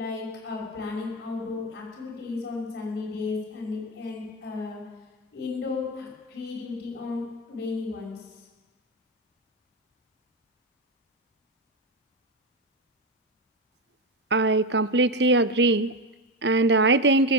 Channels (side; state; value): both; normal; correlation 0.13